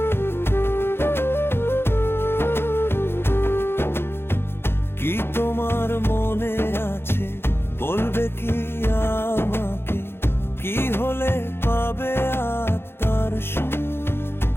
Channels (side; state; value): right; late; 0.11 ms